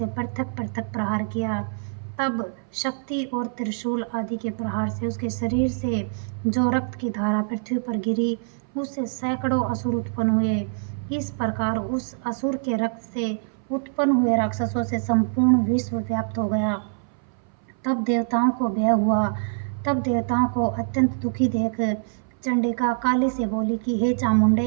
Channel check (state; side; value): silent; left; 59 dB below the other